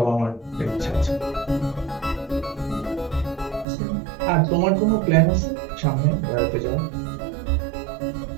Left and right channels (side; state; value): left; drops out; at 3.7 s